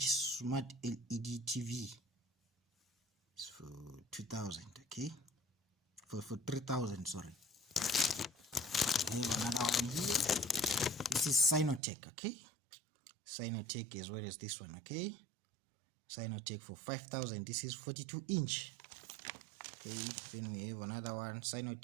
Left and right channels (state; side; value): drops out; left; at 11.8 s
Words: smart LED TV. It's for 2,000. Okay. For 3,000. Sorry. We have another one here. This is Sinotech. Okay. Sinotech as well as this one. Okay. Sinotech for 5,000. This is 42-inch. Okay, then we have another one,